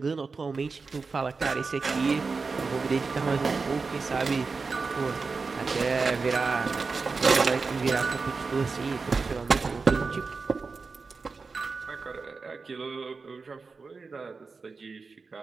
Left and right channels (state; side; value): quieter; left; 4.5 dB